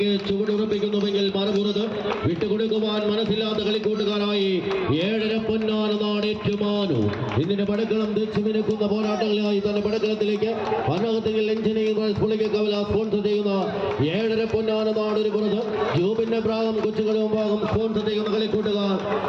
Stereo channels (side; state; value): both; identical; correlation 1.00